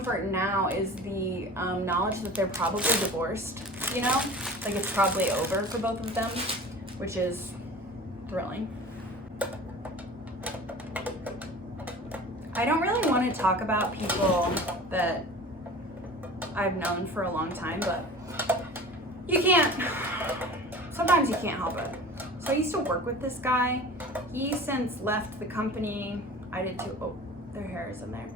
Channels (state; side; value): normal; both; correlation 0.39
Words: now is the knowledge that they're probably divorced, you know? Like it's probably over for both of them, which is thrilling. I don't really want to talk about people that I've known for a long time, but you can't, sometimes you can't help it. So I used to work with this guy. He since left the company. I did too. Oh, their hair is in there.